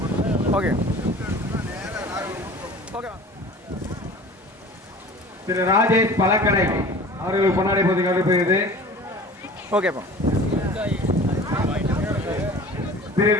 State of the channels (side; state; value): both; normal; correlation 0.42